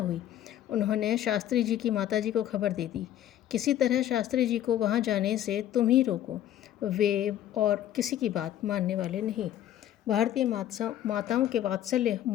उन्होंने शास्त्री जी की माताजी को खबर दे दी। किसी तरह शास्त्री जी को वहाँ जाने से तुम ही रोको, वे और किसी की बात मानने वाले नहीं। भारतीय माताओं के वात्सल्य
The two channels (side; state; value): right; quieter; 11.8 dB